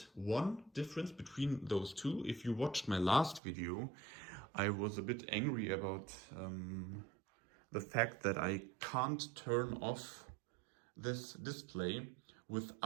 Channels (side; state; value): left; drops out; at 3.4 s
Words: One difference between those two. If you watched my last video, I was a bit angry about the fact that I can't turn off this display